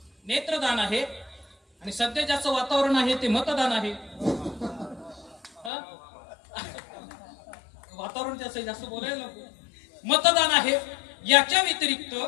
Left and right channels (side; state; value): right; drops out; at 5.7 s